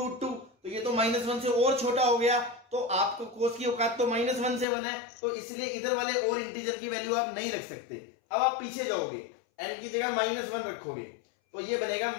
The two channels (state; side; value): drops out; right; at 4.7 s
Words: तो ये तो -1 से और छोटा हो गया, तो आपको cos की औकात तो -1 से 1 है, तो इसलिए इधर वाले और इंटीजर की वैल्यू आप नहीं रख सकते। अब आप पीछे जाओगे, n की जगह -1 रखोगे तो ये बनेगा